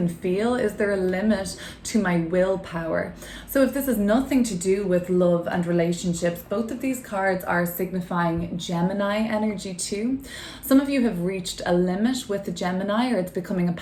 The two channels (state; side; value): identical; both; correlation 1.00